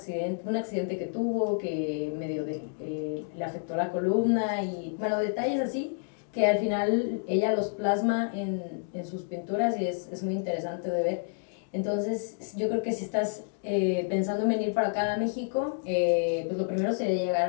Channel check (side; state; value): right; silent; digital silence